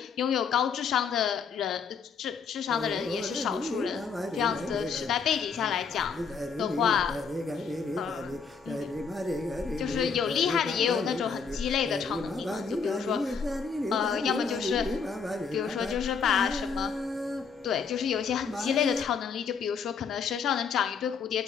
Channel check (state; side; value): quieter; right; 5.9 dB